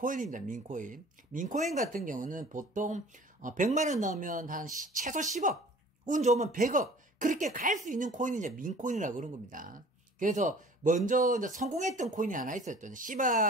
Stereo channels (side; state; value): both; normal; correlation 0.47